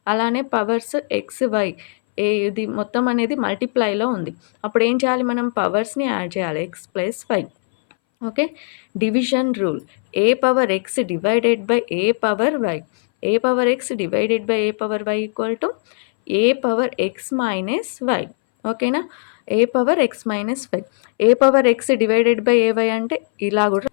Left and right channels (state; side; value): silent; right; 64 dB below the other